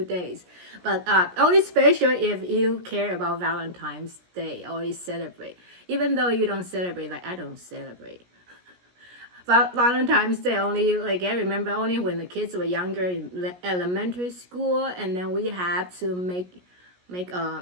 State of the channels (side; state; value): left; late; 17 ms